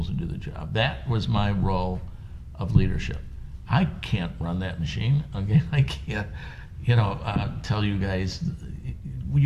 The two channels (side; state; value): both; identical; correlation 1.00